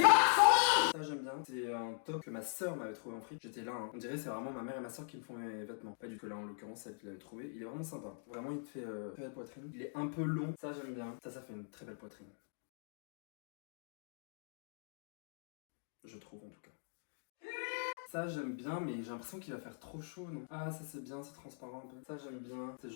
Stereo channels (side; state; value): right; silent; digital silence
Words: son linge! Ça j'aime bien. C'est un top que ma soeur m'avait trouvé en fric. J'étais là, hein. On dirait c'est vraiment ma mère et ma soeur qui me font mes vêtements. Pas du tout là en l'occurrence, celle qui l'avait trouvé. Il est vraiment sympa. Vraiment il te fait très belle poitrine. Il est un peu long. Ça j'aime bien. Ça fait une très belle poitrine. Je trouve en tout cas. Ça j'aime bien, mais j'ai l'impression qu'il va faire trop chaud, non? Ah, ça c'est bien, c'est transparent un peu. Ça j'aime bien. C'est